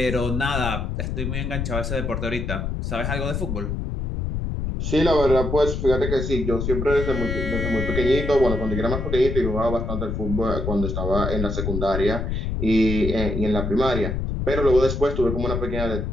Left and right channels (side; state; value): left; noise; rumble, 2 dB below the sound